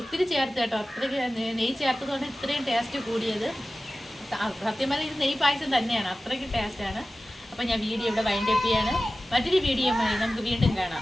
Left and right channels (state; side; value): normal; both; correlation 0.96